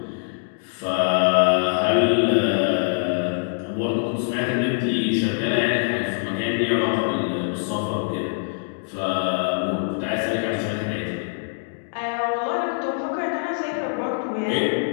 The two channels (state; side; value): silent; right; digital silence